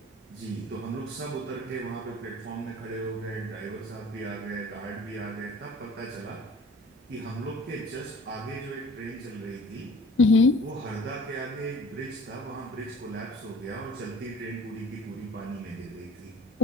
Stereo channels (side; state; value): both; normal; correlation 0.48